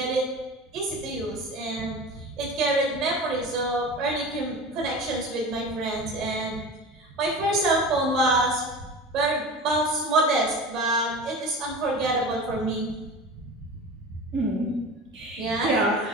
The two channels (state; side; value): normal; both; correlation 0.33